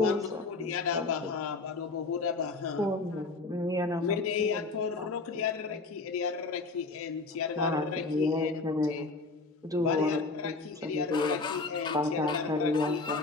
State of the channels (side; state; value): right; quieter; 3.7 dB